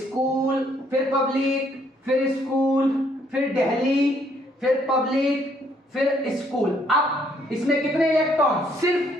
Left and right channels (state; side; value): normal; both; correlation 0.68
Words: फिर पब्लिक, फिर स्कूल, फिर दिल्ली, फिर पब्लिक, फिर स्कूल। अब इसमें कितने इलेक्ट्रॉन,